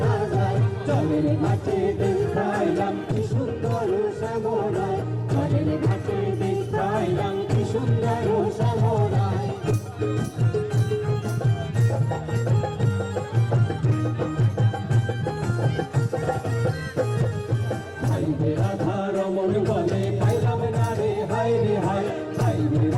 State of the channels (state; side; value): identical; both; correlation 1.00